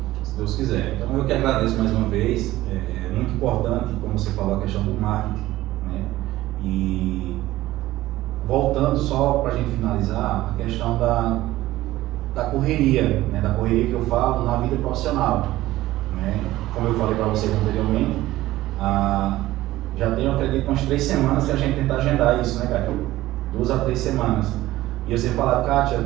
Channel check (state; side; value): quieter; left; 16.3 dB